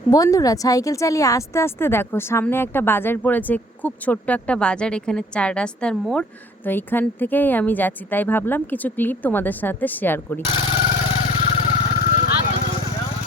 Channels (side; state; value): both; normal; correlation 0.56